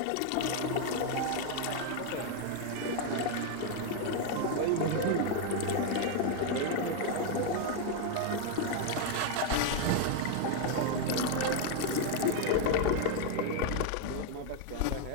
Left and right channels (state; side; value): different; both; correlation 0.01